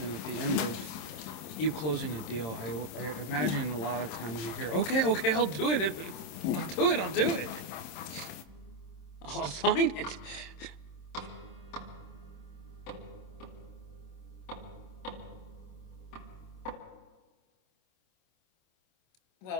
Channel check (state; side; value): late; right; 26 ms